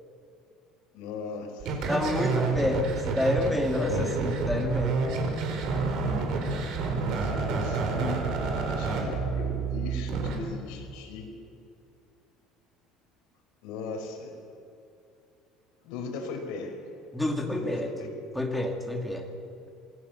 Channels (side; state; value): both; normal; correlation 0.58